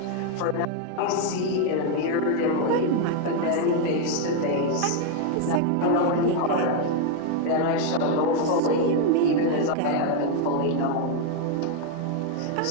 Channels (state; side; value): different; both; correlation 0.01